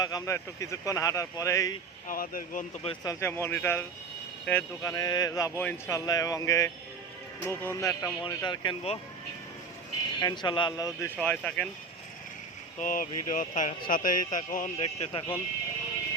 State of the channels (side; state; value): left; quieter; 4.2 dB